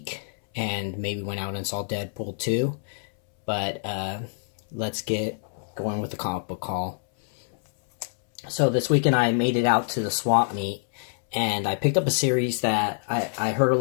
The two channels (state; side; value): silent; right; 61 dB below the other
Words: and maybe went out and saw Deadpool 2. But let's get going with the comic book haul. So this weekend I made it out to the swap meet and I picked up a series that I heard a